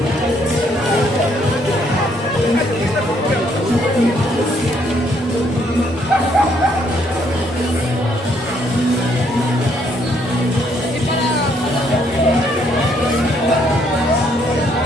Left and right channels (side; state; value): both; normal; correlation 0.69